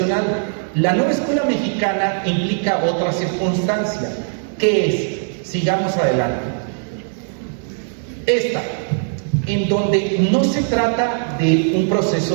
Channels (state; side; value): silent; left; digital silence